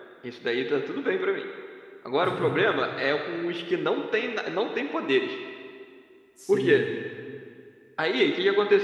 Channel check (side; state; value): both; identical; correlation 1.00